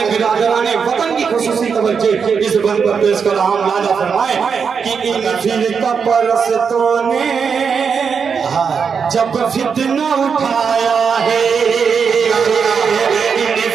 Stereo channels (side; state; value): left; quieter; 6.2 dB